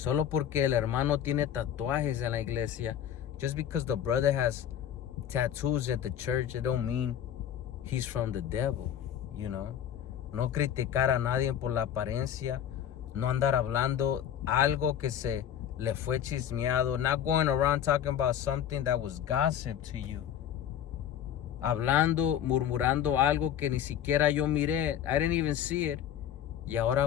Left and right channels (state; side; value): quieter; right; 9.8 dB